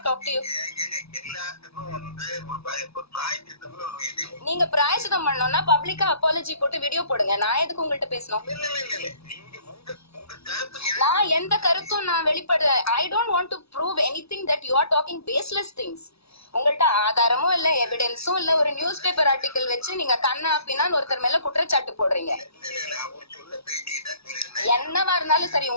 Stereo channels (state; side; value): late; right; 0.78 ms